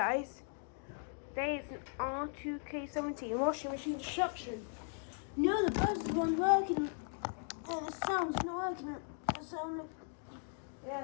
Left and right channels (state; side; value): silent; right; 52 dB below the other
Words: today is an R2K17 washing machine destruction. No, the buzz wasn't working, and the sound's not working. The sound,